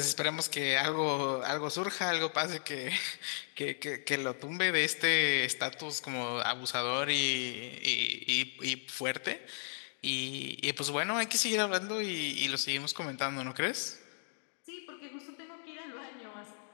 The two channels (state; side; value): silent; right; digital silence